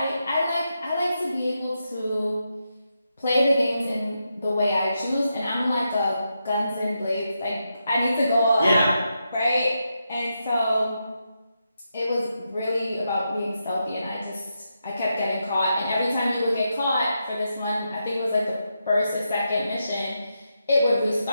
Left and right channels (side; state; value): both; inverted; correlation -0.85